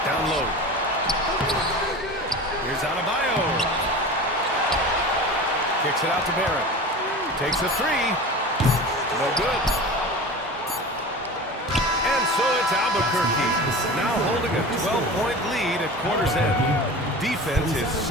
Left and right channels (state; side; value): normal; both; correlation 0.34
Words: Down low. Here's Adebayo. Kicks it out to Barrett. Takes a three. No good. And so it's Albuquerque. Now holding a 12-point lead at quarter's end. Defense is